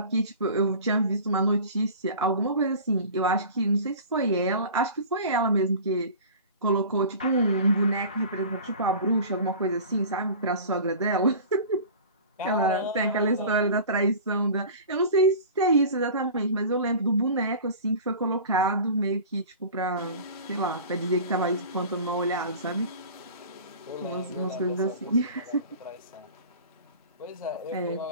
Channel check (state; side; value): inverted; both; correlation -0.39